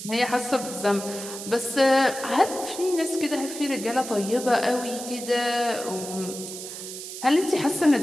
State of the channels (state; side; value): noise; right; hiss, 10 dB below the sound